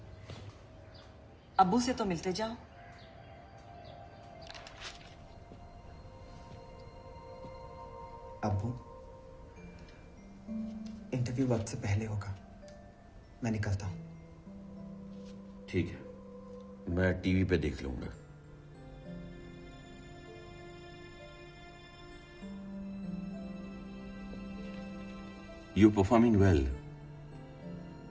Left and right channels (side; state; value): both; identical; correlation 1.00